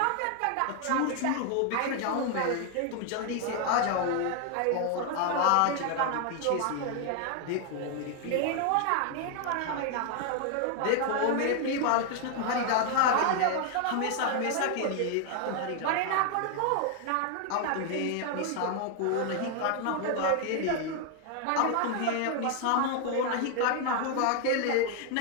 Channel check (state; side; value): different; both; correlation 0.00